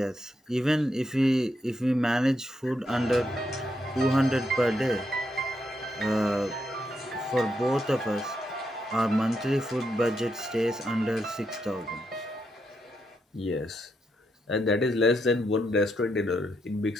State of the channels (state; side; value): normal; both; correlation 0.81